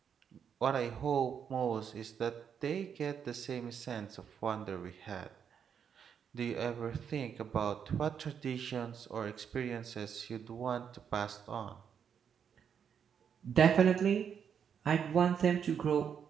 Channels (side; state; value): left; quieter; 7.6 dB